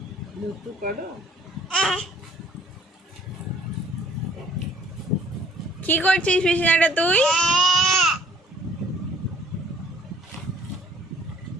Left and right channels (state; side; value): normal; both; correlation 0.58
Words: দুধ করো? কি করছিস বিছানাটা তুই?